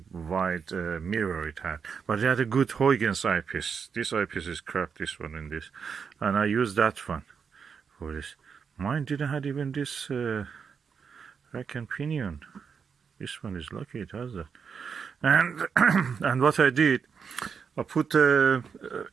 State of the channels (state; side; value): quieter; left; 6.3 dB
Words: mirror it had, but it had a good Huygens eyepiece. This eyepiece is crap, this one and this, and I used that one for this. Mine didn't have even this rack and pinion. This one is lucky it has that. And and what I did, I put